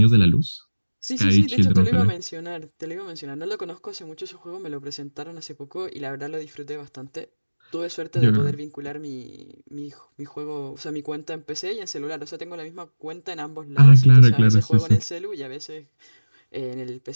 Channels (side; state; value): both; inverted; correlation -1.00